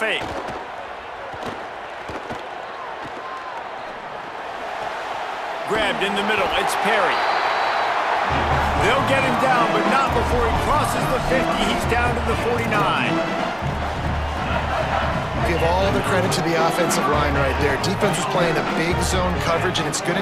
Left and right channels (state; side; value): identical; both; correlation 1.00